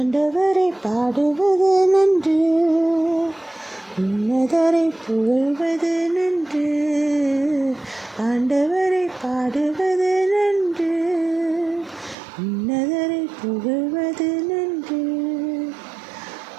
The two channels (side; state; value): left; drops out; at 12.2 s